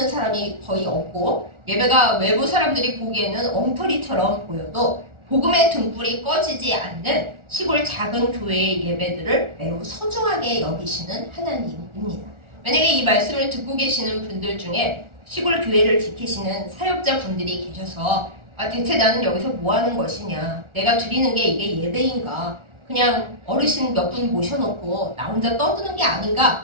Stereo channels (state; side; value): late; left; 1.4 ms